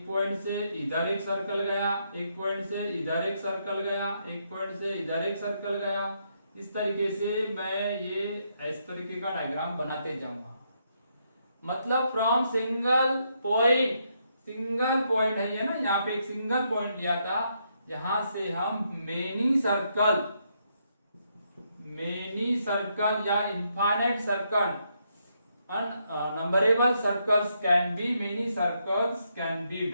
पॉइंट से इधर एक सर्कल गया, एक पॉइंट से इधर एक सर्कल गया, एक पॉइंट से इधर एक सर्कल गया। इस तरीके से मैं ये इस तरीके का डायग्राम बनाते जाऊंगा। मतलब फ्रॉम सिंगल पॉइंट है ये ना, यहाँ पे एक सिंगल पॉइंट लिया था, यहां से हम मेनी सर्कल या infinite circle, numberable circles can be, many circles can be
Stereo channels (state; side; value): inverted; both; correlation -0.77